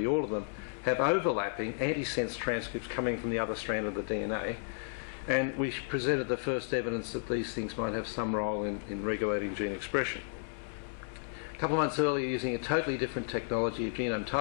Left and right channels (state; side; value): silent; right; 56 dB below the other